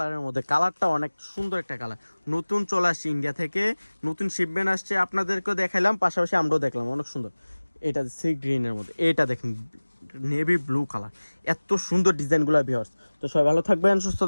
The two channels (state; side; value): inverted; both; correlation -1.00